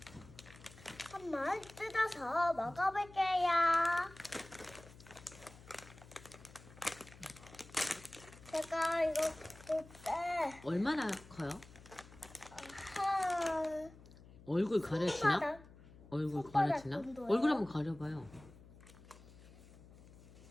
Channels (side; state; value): left; noise; hum, 20 dB below the sound